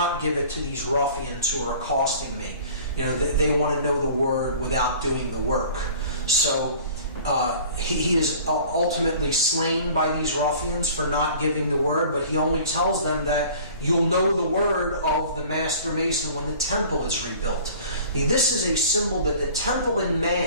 give it to these ruffians who are accosting me. They want to know the word without doing the work. So he is ultimately slain by these ruffians for not giving the word, but he only tells them that you'll know the word of the Master Mason when the temple is rebuilt. This is a symbol that the temple in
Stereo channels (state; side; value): inverted; both; correlation -0.46